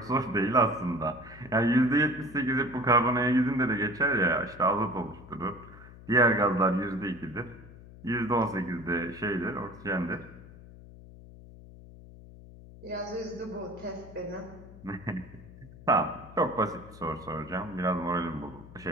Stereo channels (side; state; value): left; noise; hum, 18 dB below the sound